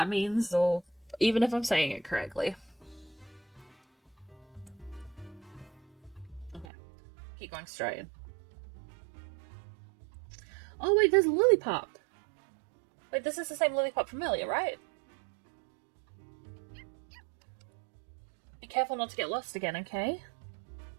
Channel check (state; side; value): drops out; left; at 6.7 s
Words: means, or even if I'm saying it correctly. Okay, keep going straight. Oh wait, there's Lillipup. Wait, this is the same Lillipup from earlier, right? Be careful not to get lost again, okay?